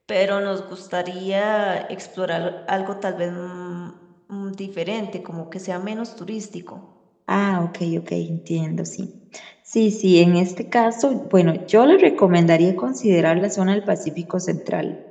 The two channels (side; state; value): both; identical; correlation 1.00